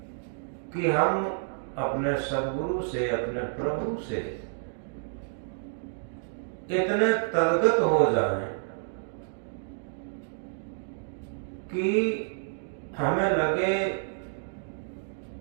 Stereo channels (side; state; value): left; silent; digital silence